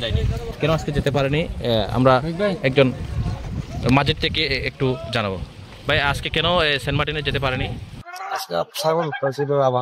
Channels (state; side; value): identical; both; correlation 1.00